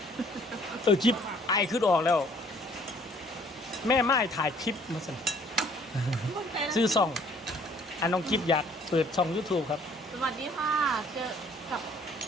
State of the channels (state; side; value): normal; both; correlation 0.59